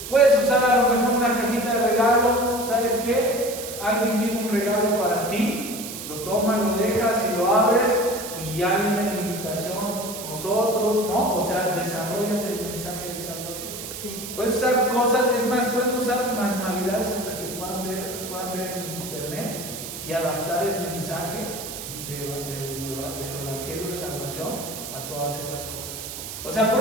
Puedes usar a lo mejor una cajita de regalo, ¿sabes qué? Alguien tiene un regalo para ti, lo tomas, lo dejas y lo abres y ya viene la invitación, nosotros, ¿no? O sea, desarrollas el mensaje de salvación. Puedes usar cosas, es más, pueden usar manualidades hasta que puedan ver en internet y adaptar el mensaje del Evangelio de Salvación a todas esas cosas. O sea, por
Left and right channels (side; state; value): right; noise; hiss, 9 dB below the sound